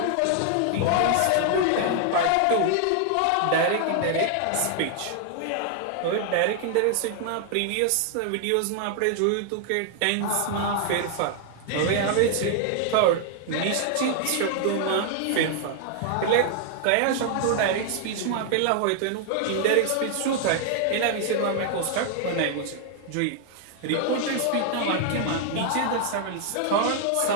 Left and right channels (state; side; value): different; both; correlation 0.00